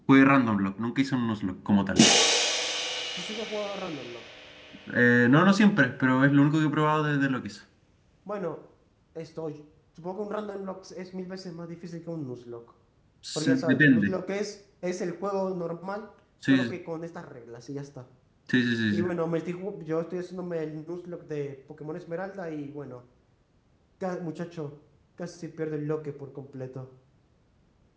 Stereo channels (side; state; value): both; identical; correlation 1.00